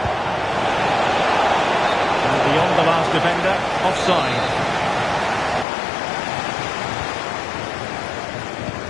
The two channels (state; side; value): drops out; right; at 5.7 s